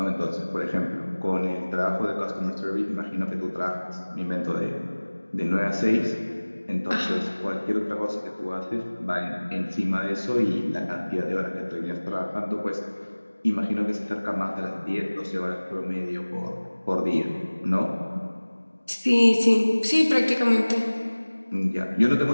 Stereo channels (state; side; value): inverted; both; correlation -1.00